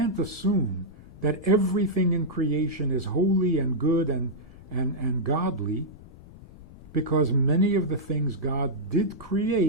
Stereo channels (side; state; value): left; noise; rumble, 19 dB below the sound